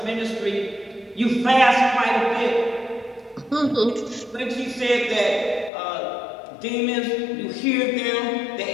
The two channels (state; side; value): drops out; right; at 5.7 s